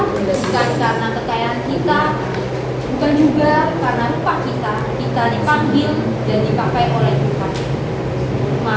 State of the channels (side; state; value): both; identical; correlation 1.00